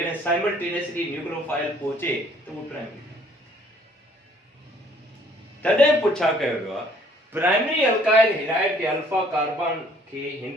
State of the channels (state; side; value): normal; both; correlation 0.60